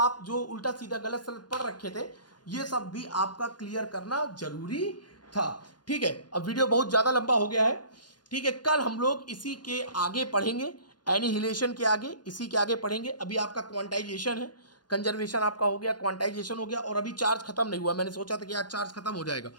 जो उल्टा सीधा गलत सलत पढ़ रखे थे, ये सब भी आपका क्लियर करना जरूरी था। ठीक है, अब वीडियो बहुत ज्यादा लंबा हो गया है। ठीक है, कल हम लोग इसी के आगे पढ़ेंगे, एनिहिलेशन के आगे, इसी के आगे पढ़ेंगे। अभी आपका क्वांटाइजेशन है, कंजर्वेशन आपका हो गया, क्वांटाइजेशन हो गया, और अभी चार्ज खत्म नहीं हुआ। मैंने सोचा था कि आज चार्ज खत्म हो जाएगा,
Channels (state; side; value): late; right; 0.70 ms